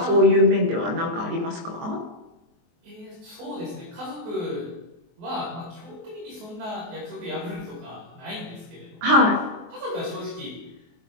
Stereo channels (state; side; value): late; left; 23 ms